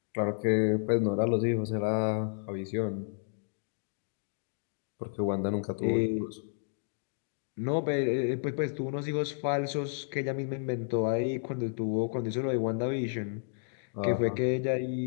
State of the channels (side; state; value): right; silent; digital silence